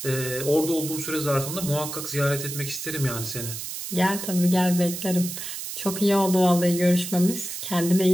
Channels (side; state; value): right; noise; hiss, 7 dB below the sound